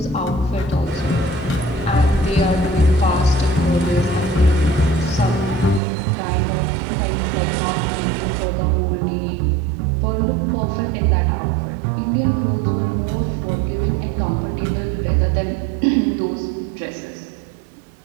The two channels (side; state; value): left; drops out; at 5.8 s